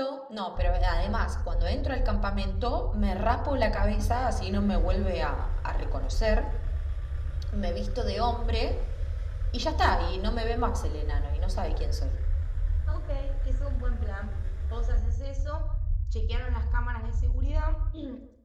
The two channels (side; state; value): both; identical; correlation 1.00